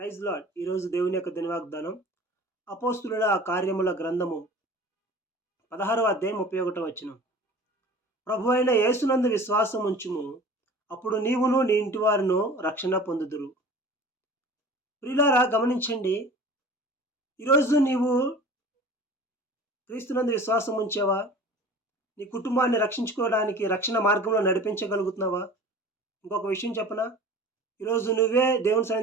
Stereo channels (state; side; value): normal; both; correlation 0.41